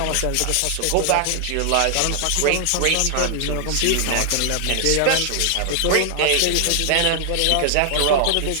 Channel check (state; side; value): different; both; correlation 0.00